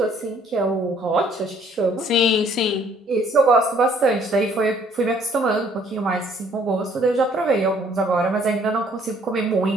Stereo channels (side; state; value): both; normal; correlation 0.61